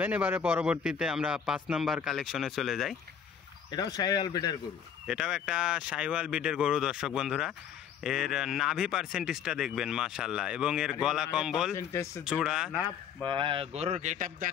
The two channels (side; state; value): right; quieter; 7.9 dB